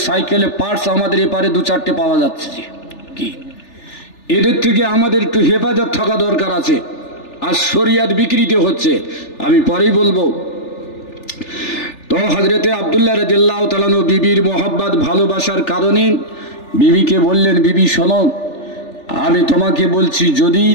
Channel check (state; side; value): late; right; 3.4 ms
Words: সাইকেলে পার্টস আমাদের এপারে 2-4টে পাওয়া যাচ্ছে। কি এদের থেকে আমাদের একটু হেফাজত থাকা দরকার আছে। আর শরিয়াত বিকৃতি হচ্ছে, আমি পরেই বলবো। তো হযরতে আব্দুল্লাহ রাদিয়াল্লাহু তাআলা আনহু বিবির মোহাব্বত ভালোবাসার কারণে বিবিকে বললেন, বিবি শোনো, আমি তোমাকে বলছি, যদি